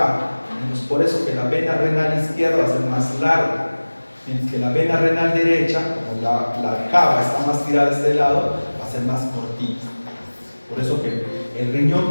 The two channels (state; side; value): inverted; both; correlation -1.00